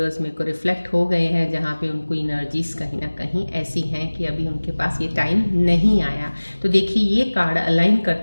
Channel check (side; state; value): both; inverted; correlation -1.00